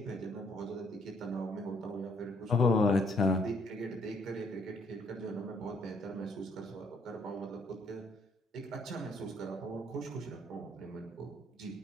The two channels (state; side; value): normal; both; correlation 0.67